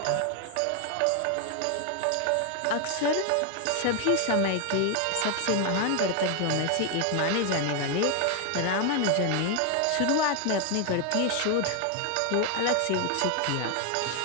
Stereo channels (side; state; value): both; different; correlation 0.01